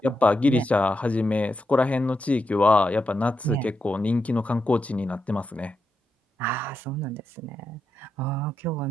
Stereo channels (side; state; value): both; normal; correlation 0.85